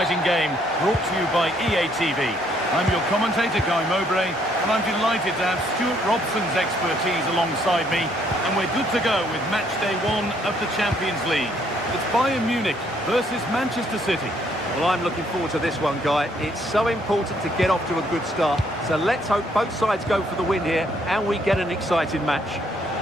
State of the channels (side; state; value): both; normal; correlation 0.68